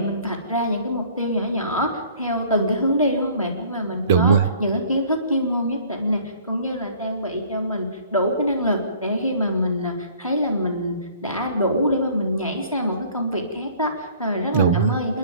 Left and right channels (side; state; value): both; inverted; correlation -0.53